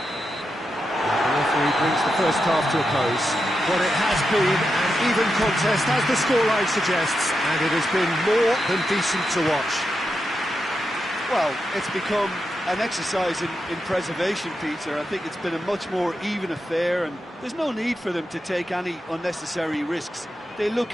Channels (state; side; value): normal; both; correlation 0.87